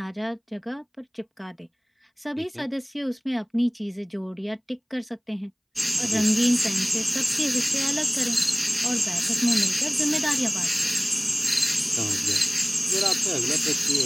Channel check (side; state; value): both; identical; correlation 1.00